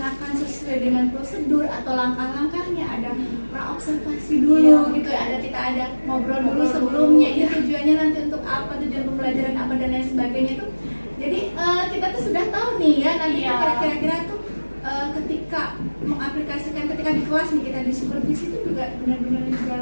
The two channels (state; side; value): inverted; both; correlation -1.00